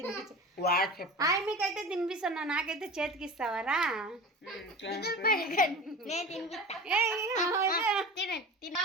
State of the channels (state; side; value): normal; both; correlation 0.34